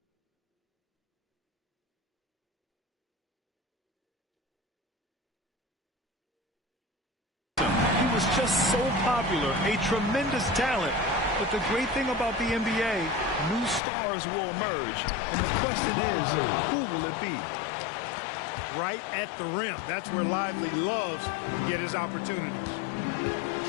He was just so popular, a tremendous talent. But the great thing about the NBA, new stars will emerge. And the question is, who will it be? Right at the rim. That's where Lively loves to get his opportunities.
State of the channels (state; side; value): drops out; right; at 13.8 s